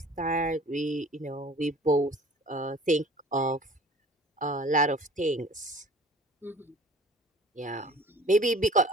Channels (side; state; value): both; normal; correlation 0.46